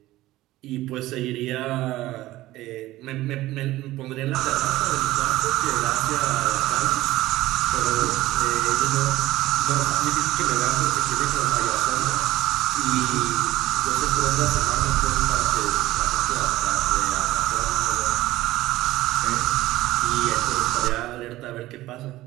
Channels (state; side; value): quieter; left; 16.7 dB